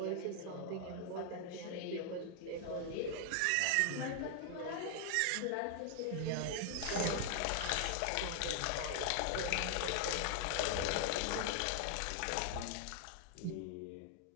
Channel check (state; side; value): different; both; correlation 0.00